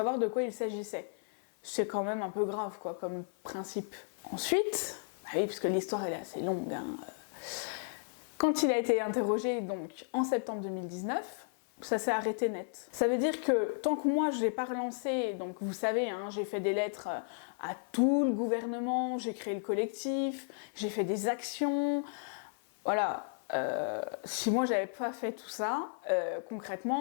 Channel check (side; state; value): right; silent; 55 dB below the other